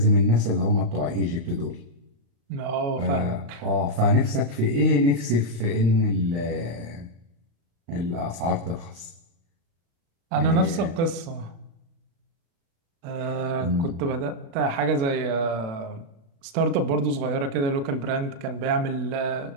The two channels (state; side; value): late; left; 36 ms